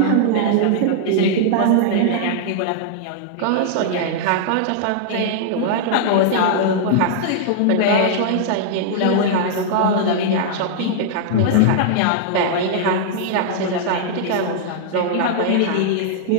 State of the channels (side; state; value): both; different; correlation -0.01